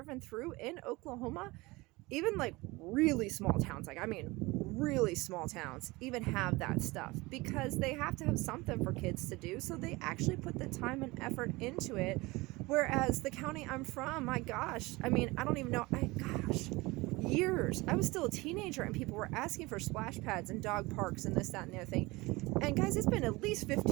through in Oklahoma, even like really small towns, really small towns, even have that stuff because they have to have something for kids to do. So they actually put the time and effort into it. Whereas the county I'm from, my gosh, I don't even know, years. I was still a teenager and people were asking for splash pads and dog parks and this, that, and the other thing. And guys, it's been at least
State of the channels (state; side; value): quieter; left; 22.4 dB